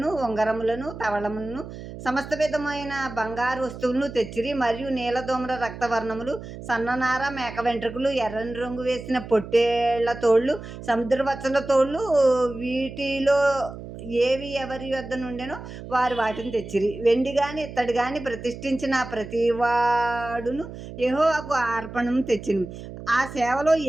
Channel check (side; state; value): right; noise; hum, 12 dB below the sound